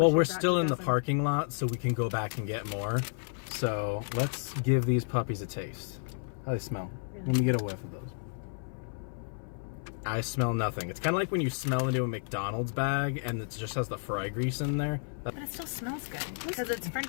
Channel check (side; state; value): right; silent; 57 dB below the other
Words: we're still in the parking lot, so we can go back and get more. So let's give these puppies a taste. How do they smell? Really? Let me get a whiff of those. I smell nothing. It's kind of like when you smell into a McDonald's bag and it just has the fry grease in there. But it still smells good, because it's French